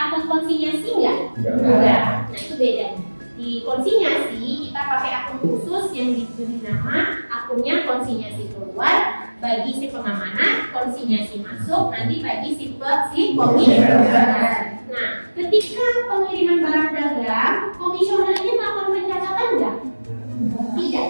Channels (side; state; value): both; inverted; correlation -1.00